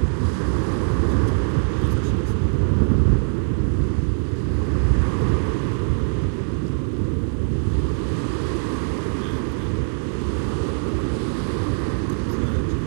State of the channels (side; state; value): left; silent; 58 dB below the other